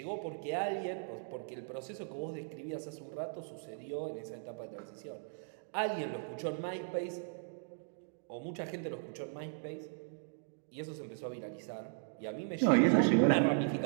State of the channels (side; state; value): left; silent; digital silence